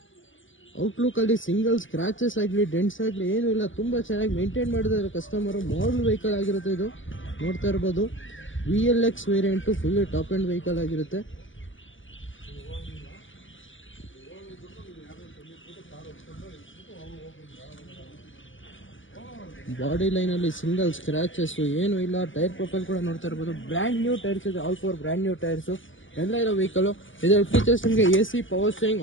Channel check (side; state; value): right; late; 0.56 ms